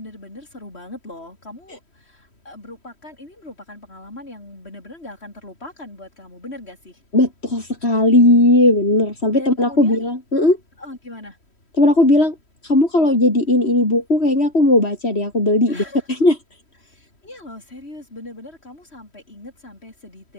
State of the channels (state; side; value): late; right; 3.1 ms